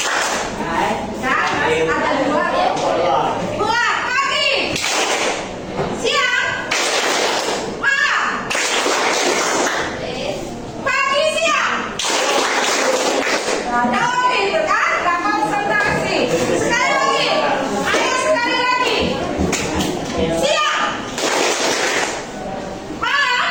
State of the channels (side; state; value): both; identical; correlation 1.00